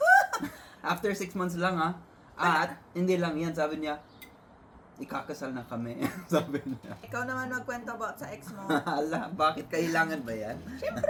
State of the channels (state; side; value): identical; both; correlation 1.00